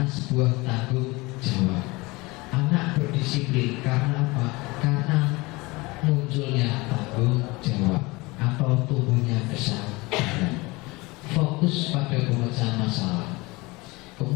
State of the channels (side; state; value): right; quieter; 23.6 dB